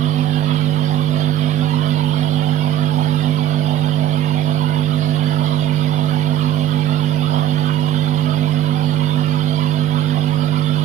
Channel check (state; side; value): quieter; left; 11.7 dB